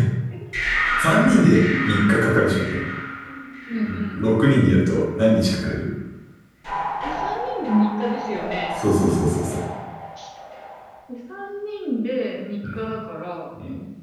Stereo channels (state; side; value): identical; both; correlation 1.00